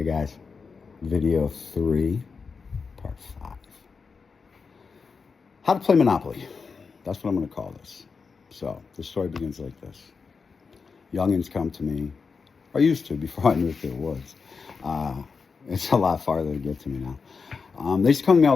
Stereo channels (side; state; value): right; quieter; 5.1 dB